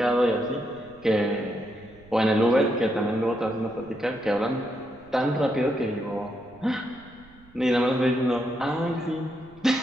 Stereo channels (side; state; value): right; noise; rumble, 26 dB below the sound